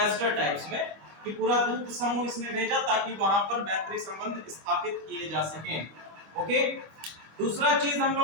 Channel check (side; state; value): left; late; 25 ms